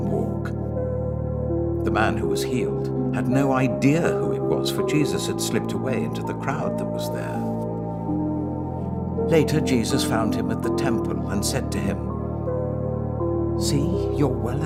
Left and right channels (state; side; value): identical; both; correlation 1.00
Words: walk?" The man who was healed had no idea who it was, for Jesus had slipped away into the crowd that was there. Later, Jesus found him at the temple and said to him, "See, you're well